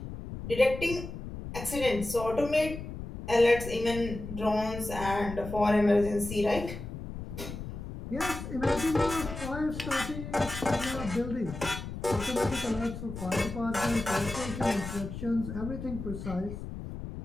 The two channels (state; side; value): noise; left; rumble, 9 dB below the sound